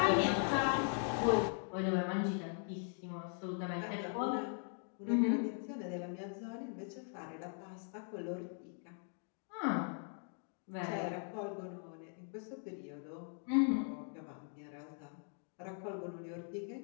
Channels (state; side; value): silent; right; 51 dB below the other